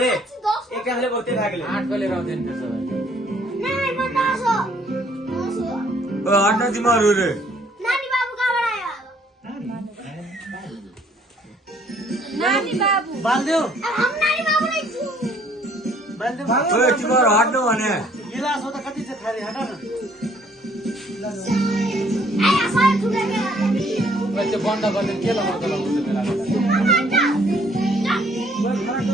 एक हमले बहुते भाग ले 8 को लिएर आउँदैन त्यसो भए नहीं मैं 10 हो हट्न तिमीहरू रे नानी बाबू कहाँबाट आयो नानी बाबू बाल्दियो अब हम नानी बाबू नहीं छु बाल्दियो ओए तिमीहरू हट्नु भने गिलास हो त कति छ खाली हटा न आया सारे ठुले के त्यो बन्द गर्ने के लगाउँछ बेला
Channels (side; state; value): both; normal; correlation 0.62